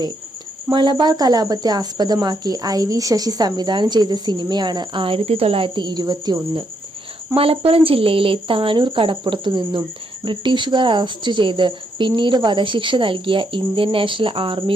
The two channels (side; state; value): both; normal; correlation 0.76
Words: മലബാർ കലാപത്തെ ആസ്പദമാക്കി IV ശശി സംവിധാനം ചെയ്ത സിനിമയാണ് 1921. മലപ്പുറം ജില്ലയിലെ താനൂർ കടപ്പുറത്തു നിന്നും ബ്രിട്ടീഷുകാർ അറസ്റ്റ് ചെയ്ത് പിന്നീട് വധശിക്ഷ നൽകിയ ഇന്ത്യൻ നാഷണൽ